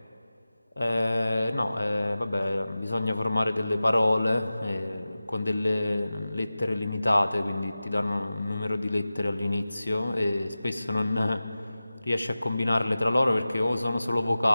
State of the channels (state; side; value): inverted; both; correlation -0.96